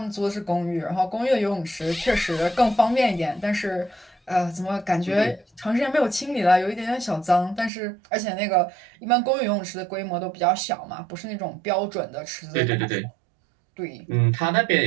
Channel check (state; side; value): drops out; left; at 7.7 s